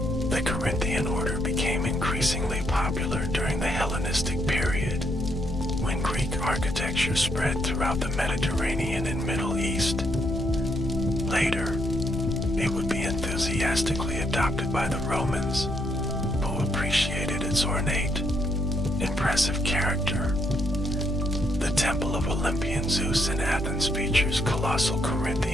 The Corinthian order became increasingly popular during the Hellenistic period, when Greek architecture spread throughout the Mediterranean and Middle East. Later, it would be enthusiastically adopted by the Romans, who appreciated its ornate, impressive character. The Temple of Olympian Zeus in Athens features colossal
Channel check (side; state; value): left; noise; hum, 10 dB below the sound